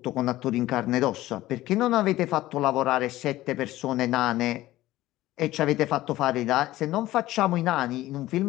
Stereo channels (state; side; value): quieter; right; 16.2 dB